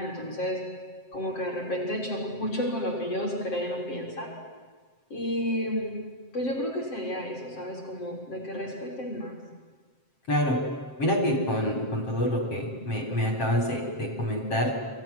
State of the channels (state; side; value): late; right; 7.6 ms